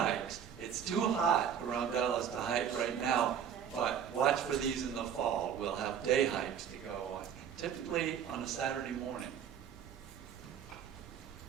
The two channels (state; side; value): quieter; left; 8.4 dB